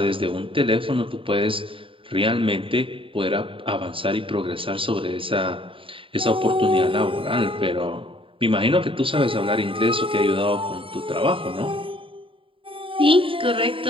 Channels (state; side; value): late; left; 0.25 ms